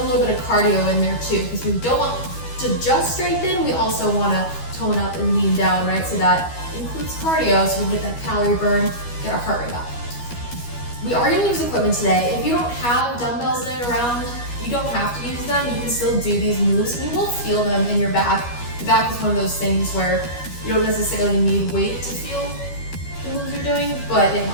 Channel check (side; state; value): right; late; 12 ms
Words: little bit of cardio in there too, because we don't want to just strengthen, we also want to tone up and lean down, right? So that includes cardio, so we get that calorie burn, get our heart rate up. We are going to use equipment today. If you don't have dumbbells laying around, you don't have to use them. You can still do these moves. You will feel them in your back. The back is one of those things where you don't necessarily need weight to feel the moves you're doing, but it